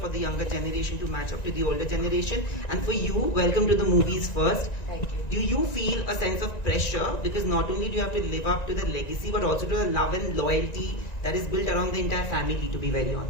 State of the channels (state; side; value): late; right; 1.9 ms